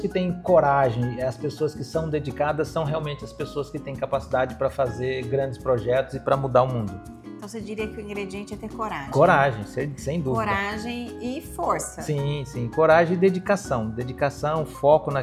têm coragem, as pessoas que são dedicadas, são realmente as pessoas que têm capacidade para fazer grandes projetos e para mudar o mundo. Então você diria que o ingrediente é ter coragem. Coragem, sem dúvida. Coragem e força. Sim, coragem e dedicação. Dedicação, foco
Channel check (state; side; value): identical; both; correlation 1.00